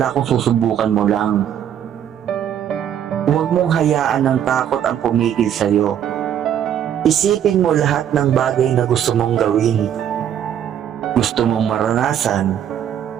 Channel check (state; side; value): quieter; left; 9.7 dB